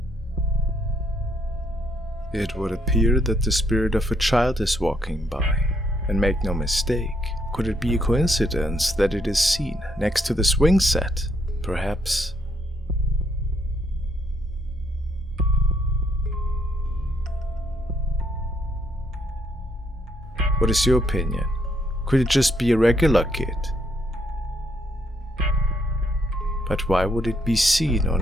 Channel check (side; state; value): both; normal; correlation 0.72